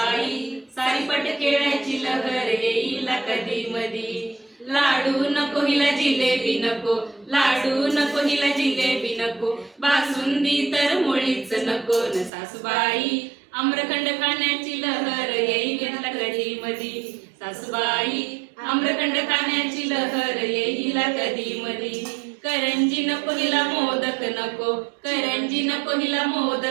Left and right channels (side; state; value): left; drops out; at 12.3 s